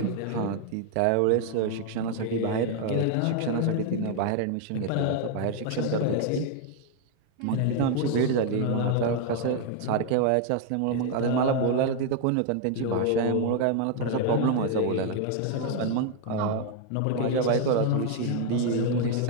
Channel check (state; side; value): different; both; correlation 0.00